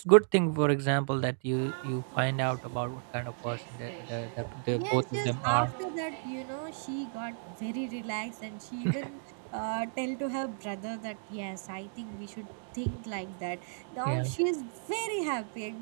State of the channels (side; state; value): left; silent; digital silence